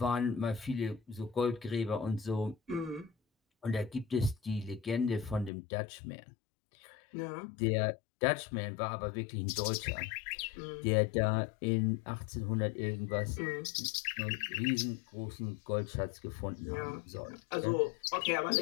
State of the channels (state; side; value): drops out; right; at 5.5 s